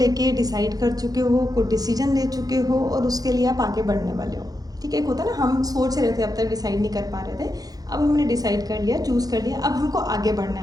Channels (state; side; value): late; left; 0.18 ms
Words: डिसाइड कर चुके हो, कुछ डिसीजन ले चुके हो, और उसके लिए आप आगे बढ़ने वाले हो, ठीक है। एक होता है ना, हम सोच रहे थे, अब तक डिसाइड नहीं कर पा रहे थे, अब हमने डिसाइड कर लिया, चूज़ कर लिया, अब हमको आगे बढ़ना